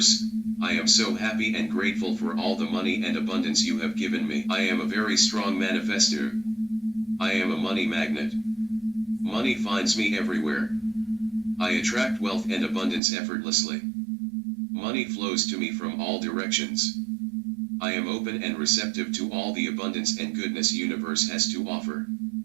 I am so happy and grateful for all the money and abundance you have given me. I am a very strong manifester. I am a money magnet. Money finds me everywhere. I attract wealth and abundance effortlessly. Money flows to me from all directions. I am open and receptive to all the abundance and goodness universe has to offer.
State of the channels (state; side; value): drops out; left; at 13.0 s